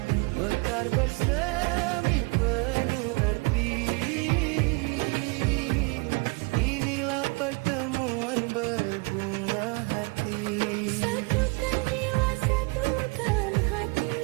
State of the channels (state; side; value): quieter; left; 29.4 dB